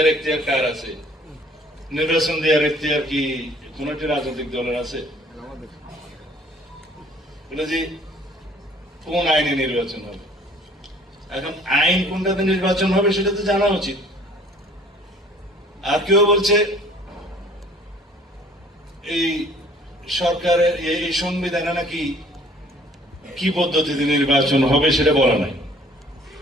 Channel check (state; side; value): normal; both; correlation 0.55